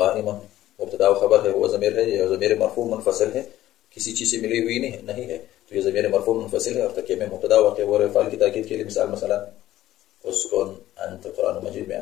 مبتدا و خبر ہے، وہ ضمیر ہے، یہ ضمیر مرفوع منفصل ہے، کسی چیز سے ملی ہوئی نہیں ہے، تو یہ ضمیر مرفوع منفصل ہے اور ترکیب میں مبتدا واقع ہو رہا ہے فاعل کی تاکید کے لیے۔ مثلا اسکن انت، قرآن مجید میں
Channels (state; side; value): quieter; right; 14.1 dB